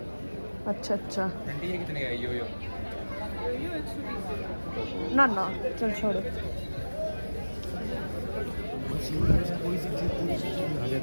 अच्छा आंटी ये कितने का है? यो ना चल छोड़ो।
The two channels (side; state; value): both; inverted; correlation -1.00